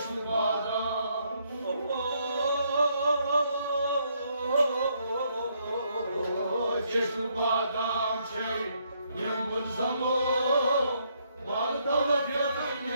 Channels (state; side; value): inverted; both; correlation -0.72